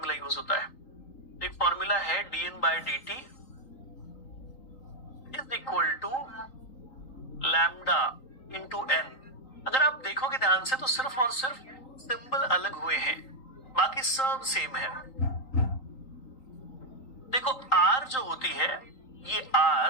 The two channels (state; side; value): late; right; 3.8 ms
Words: यूज होता है? एक फॉर्मूला है dn by dt is equal to lambda into n। अगर आप देखोगे ध्यान से तो सिर्फ और सिर्फ सिंबल अलग हुए हैं, बाकी सब सेम है। देखो R जो होती है, ये